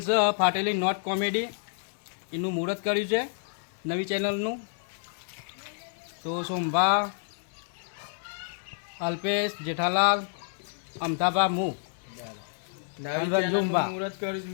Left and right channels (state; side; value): silent; right; 58 dB below the other